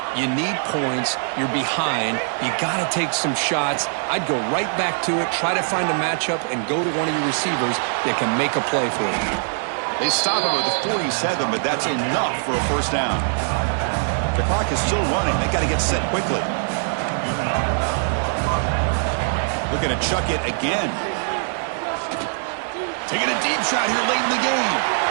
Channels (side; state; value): left; silent; 64 dB below the other